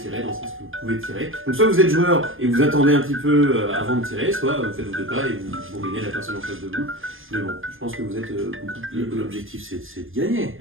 dans le sens que vous pouvez tirer. Donc soit vous êtes joueur et vous attendez un petit peu avant de tirer, soit vous faites vos deux pas et vous bourrinez la personne en face de vous. Mais bon, je pense que vous êtes beaucoup plus... L'objectif, c'est de gagner.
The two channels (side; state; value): left; late; 0.59 ms